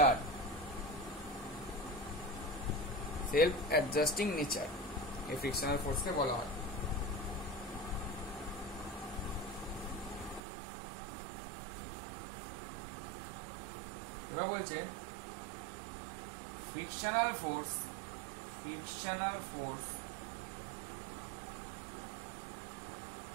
নেচার, এই ফ্রিকশনাল ফোর্সকে বলা হয়। এবার বলছে frictional force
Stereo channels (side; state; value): left; drops out; at 10.4 s